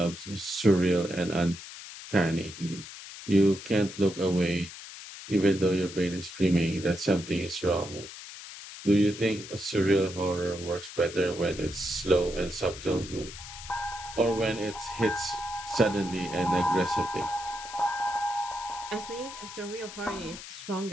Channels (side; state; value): left; noise; hiss, 13 dB below the sound